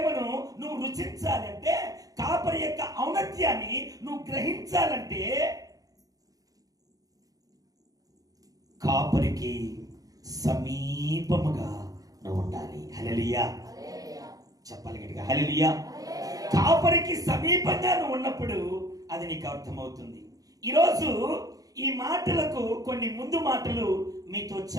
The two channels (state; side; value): late; left; 0.17 ms